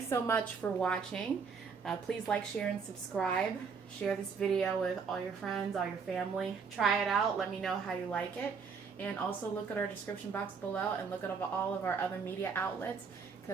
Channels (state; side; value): quieter; left; 5.7 dB